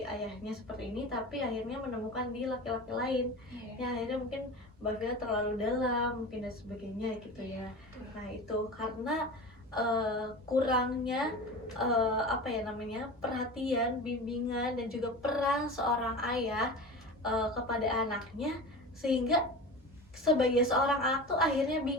ayahnya seperti ini, tapi akhirnya menemukan di laki-laki lain ya akhirnya mungkin Mbak Vila terlalu dalam mungkin dan sebagainya gitu ya. Nah itu karena kurangnya apa ya namanya, perhatian, bimbingan dan juga peran seorang ayah kepada anaknya, sehingga sebagai seorang anak tuh akhirnya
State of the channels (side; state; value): both; normal; correlation 0.31